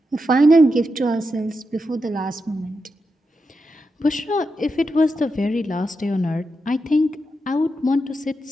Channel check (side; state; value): both; normal; correlation 0.86